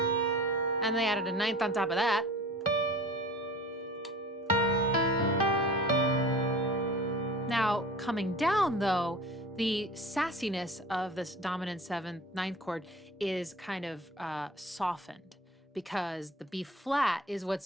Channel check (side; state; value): both; normal; correlation 0.41